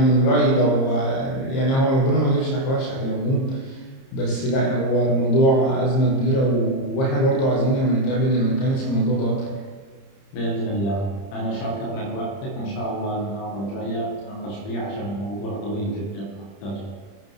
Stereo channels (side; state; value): right; late; 30 ms